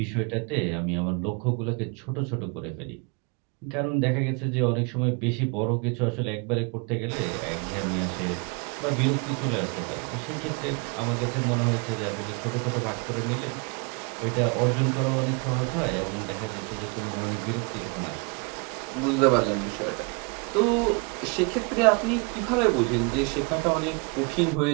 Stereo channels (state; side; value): quieter; left; 32.5 dB